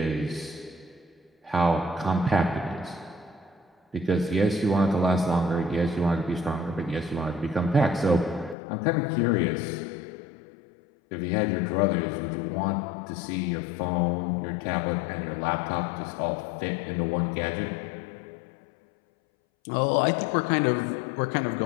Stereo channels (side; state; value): right; drops out; at 8.6 s